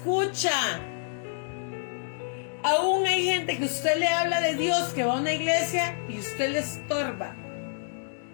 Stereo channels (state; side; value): silent; right; digital silence